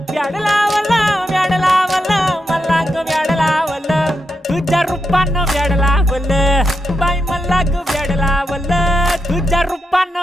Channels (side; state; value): both; normal; correlation 0.86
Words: व्याड लावलं व्याड लावलं मला ग व्याड लावलं तुझ्या रूपानं व्याड लावलं बाई मला ग व्याड लावलं तुझ्या